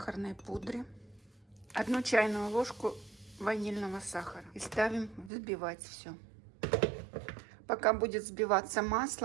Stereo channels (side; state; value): left; drops out; at 5.3 s